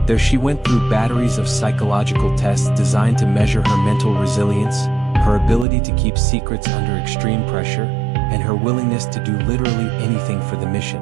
There she went through batteries of psychological tests designed to measure her mental resilience, her ability to keep secrets under extreme pressure, and her willingness to do literally anything for the mission.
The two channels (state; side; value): drops out; left; at 5.7 s